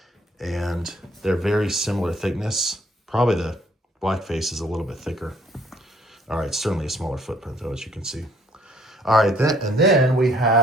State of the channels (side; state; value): both; normal; correlation 0.61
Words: And they're very similar thickness. Probably the blackface is a little bit thicker. All right, certainly a smaller footprint though, as you can see. All right, then I